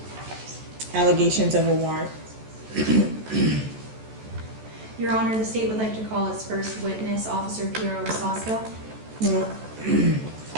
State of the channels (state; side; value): late; left; 14 ms